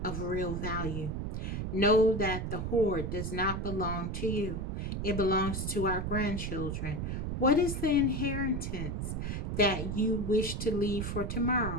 of real value. Know that the hoard does not belong to you. It belongs to our grandchildren. What is the inheritance that you wish to leave for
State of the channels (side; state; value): right; noise; rumble, 3 dB below the sound